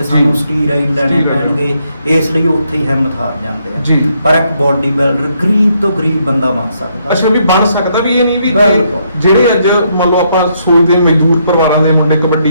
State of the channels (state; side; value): inverted; both; correlation -0.74